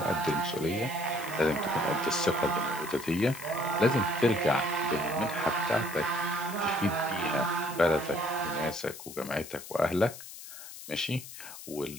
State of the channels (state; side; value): noise; left; hiss, 13 dB below the sound